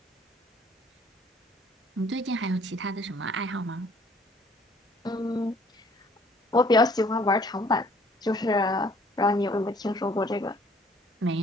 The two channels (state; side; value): normal; both; correlation 0.58